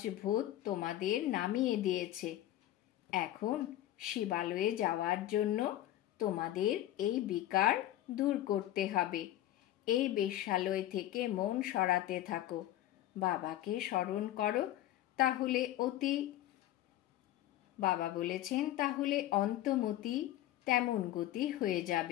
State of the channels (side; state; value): right; quieter; 13.8 dB